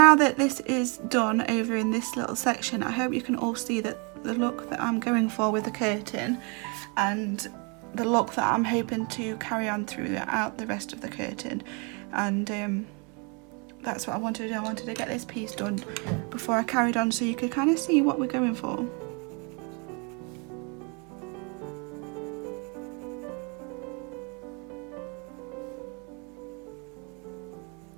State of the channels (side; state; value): left; quieter; 33.1 dB